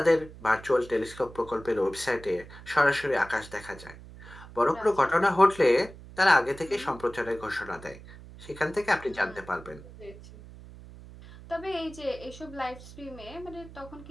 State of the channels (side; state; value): right; noise; hum, 17 dB below the sound